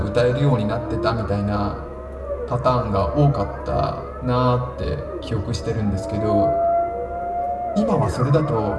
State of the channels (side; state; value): both; identical; correlation 1.00